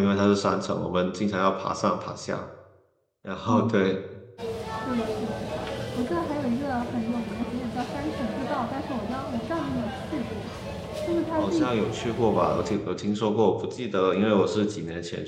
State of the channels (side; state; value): both; identical; correlation 1.00